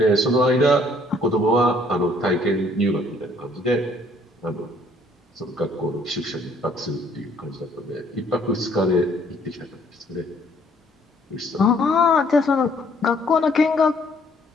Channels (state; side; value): normal; both; correlation 0.62